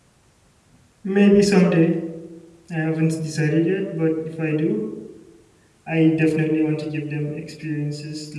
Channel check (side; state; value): both; identical; correlation 1.00